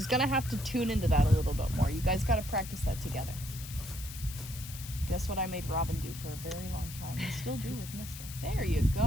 gonna have to tune into that a little bit more. You guys gotta practice that together. Guess what I made Robin do for a very long time and still do with Mister. There you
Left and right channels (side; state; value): left; noise; hiss, 12 dB below the sound